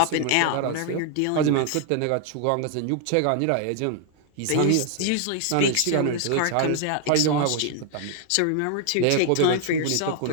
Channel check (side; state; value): both; different; correlation 0.00